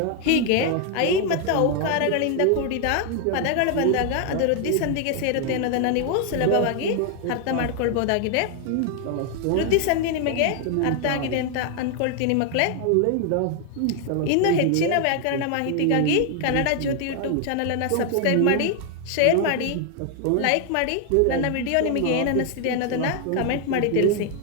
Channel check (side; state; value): both; different; correlation 0.00